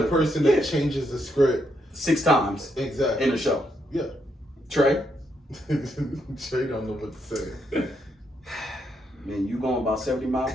to person that changes the script 6 times exactly in a show. Yeah. Trey? Trey don't know what to say. Man, you going about 70 miles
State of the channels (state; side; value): normal; both; correlation 0.78